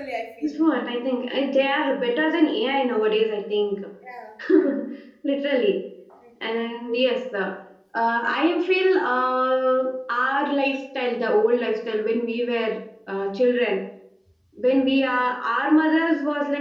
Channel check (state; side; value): identical; both; correlation 1.00